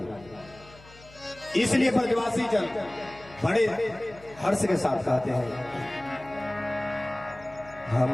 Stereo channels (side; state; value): left; noise; hum, 22 dB below the sound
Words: इसलिए ब्रजवासी जन बड़े हर्ष के साथ कहते हैं,